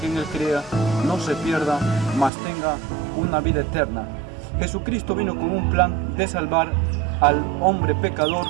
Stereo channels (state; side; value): drops out; left; at 2.3 s